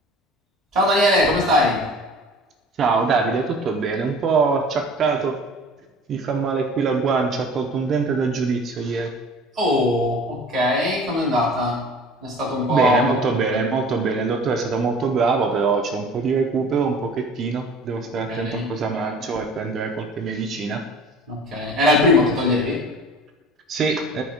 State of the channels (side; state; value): both; normal; correlation 0.44